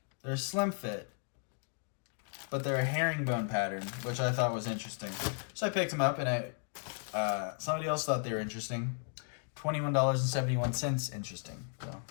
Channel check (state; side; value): silent; right; 54 dB below the other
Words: They're slim fit, but they're a herringbone pattern, which I thought was interesting. So I picked them up, and somebody else thought they were interesting. $21.71 interesting. So